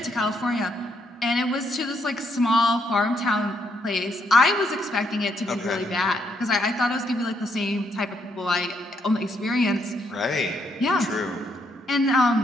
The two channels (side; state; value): both; normal; correlation 0.75